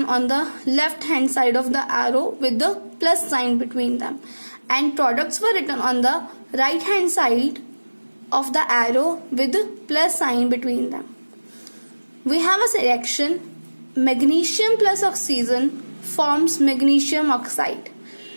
on the left hand side of the arrow with the plus sign between them, and products were written on the right hand side of the arrow with the plus sign between them. We have a reaction magnesium plus oxygen forms magnesium oxide.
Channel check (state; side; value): inverted; both; correlation -1.00